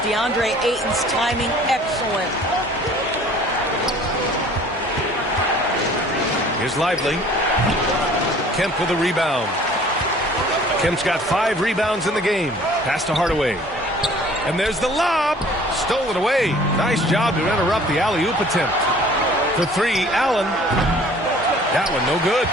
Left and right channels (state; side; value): normal; both; correlation 0.51